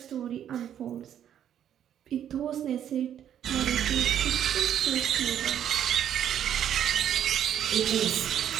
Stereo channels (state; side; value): quieter; left; 10.0 dB